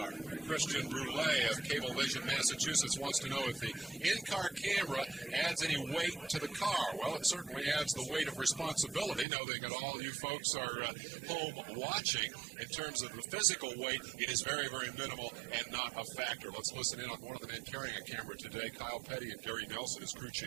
Christian Brule of Cablevision, Massachusetts, wants to know if the in-car camera adds any weight to the car. Well, it certainly adds the weight of responsibility, knowing that all you folks are home watching. In terms of the physical weight, it is very, very minimal and not a factor. Let's listen in on one of the men carrying a camera today, Kyle Petty, and Gary Nelson, his crew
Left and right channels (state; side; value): drops out; left; at 9.2 s